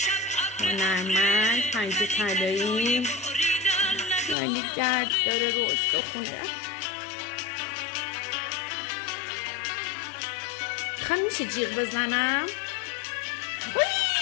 هنرمند، پنجه طلایی، یعنی درد داره رو استخونه. خواهم میشه جیغ بزنم؟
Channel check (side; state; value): right; drops out; at 4.4 s